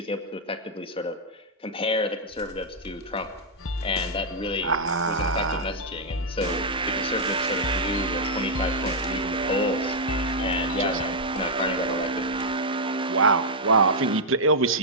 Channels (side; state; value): both; normal; correlation -0.05